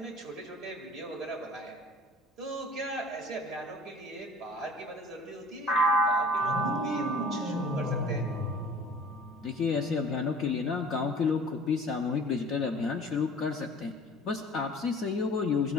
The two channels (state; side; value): normal; both; correlation 0.46